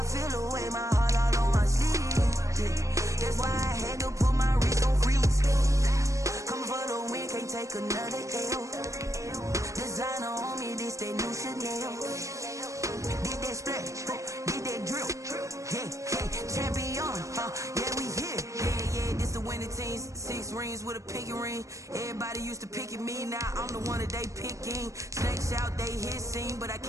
feel away my heart all on my sleeve. Yeah, that's why I had to put my wrist on freeze. Coming for the win, can't take another L. Designer on me, this that new Chanel. Did that splash, did that drill. Yeah, champion, yeah, we here. Yeah, this the winning team. 6 rings with a pinky ring. Everybody used to pick at me, now I'm the one that they picking. Snakes out, they hit scene, but I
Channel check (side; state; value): left; late; 0.15 ms